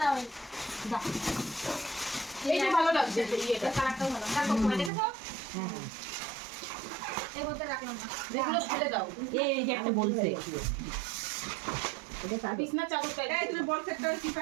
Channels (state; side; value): drops out; left; at 4.9 s